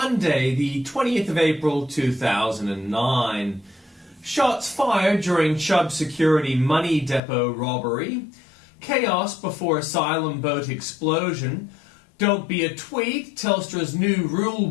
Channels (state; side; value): drops out; right; at 7.2 s